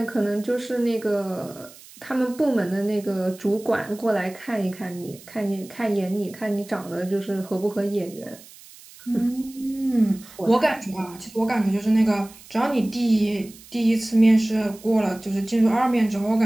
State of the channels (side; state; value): right; noise; hiss, 21 dB below the sound